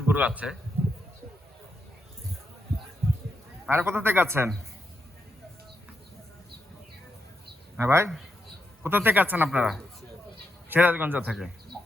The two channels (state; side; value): normal; both; correlation 0.83